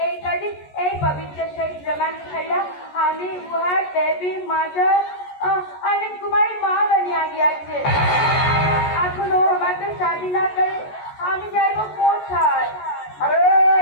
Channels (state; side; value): late; right; 14 ms